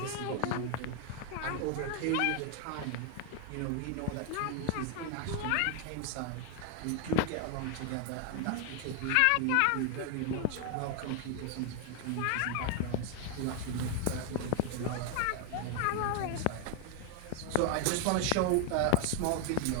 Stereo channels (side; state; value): both; different; correlation 0.00